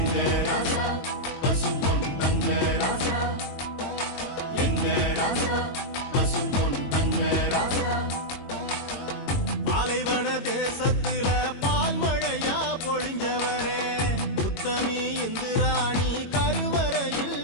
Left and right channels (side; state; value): right; late; 22 ms